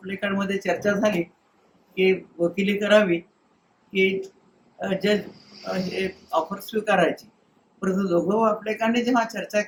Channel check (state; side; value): identical; both; correlation 1.00